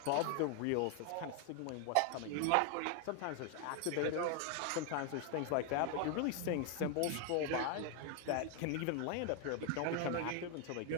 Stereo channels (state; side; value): different; both; correlation 0.01